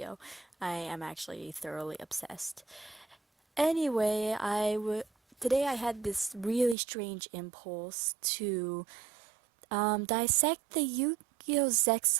I am actually thoroughly obsessed. Anyway, today I had this really strange impulse to dissect the Yu-Gi-Oh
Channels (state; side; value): drops out; left; at 6.8 s